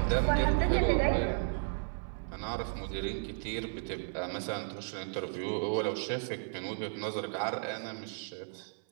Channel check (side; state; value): left; silent; 55 dB below the other